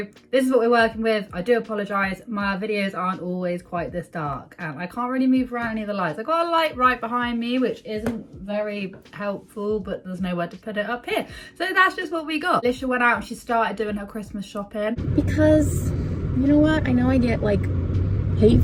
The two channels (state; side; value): identical; both; correlation 1.00